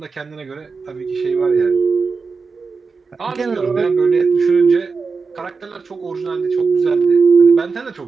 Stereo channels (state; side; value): quieter; left; 4.7 dB